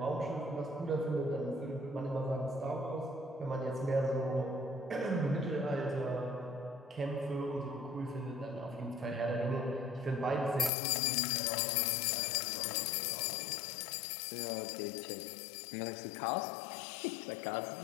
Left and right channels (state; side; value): drops out; right; at 10.7 s